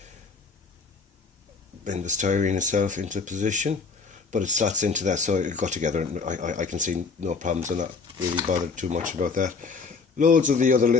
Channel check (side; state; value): right; quieter; 4.7 dB